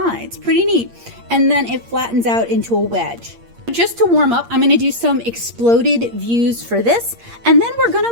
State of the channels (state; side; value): late; left; 8.6 ms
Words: Pretty neat. And then it flattens out into a wedge. Just to warm up, I'm going to do some exploded views for this, and then we're going